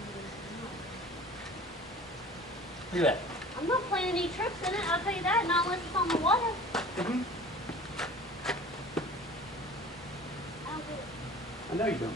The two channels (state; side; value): normal; both; correlation 0.43